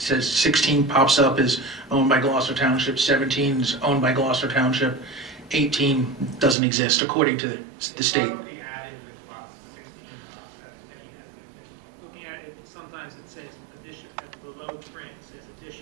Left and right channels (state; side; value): drops out; left; at 6.6 s